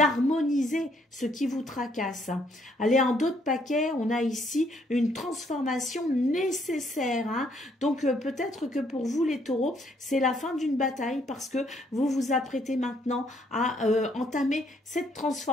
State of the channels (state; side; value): normal; both; correlation 0.68